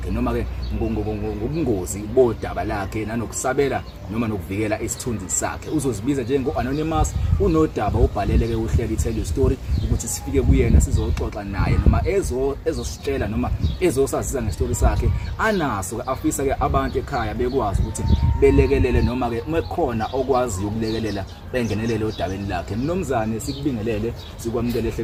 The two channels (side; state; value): both; identical; correlation 1.00